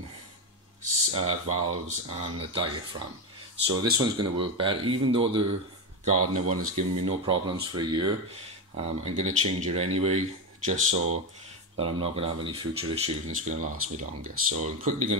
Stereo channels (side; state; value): both; normal; correlation 0.13